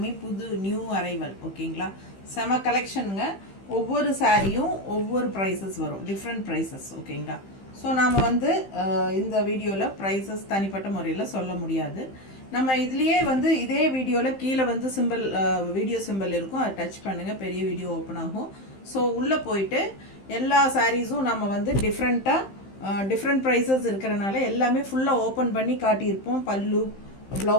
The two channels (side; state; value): right; late; 15 ms